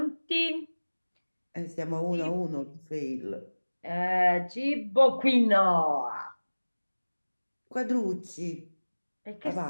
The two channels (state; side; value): inverted; both; correlation -1.00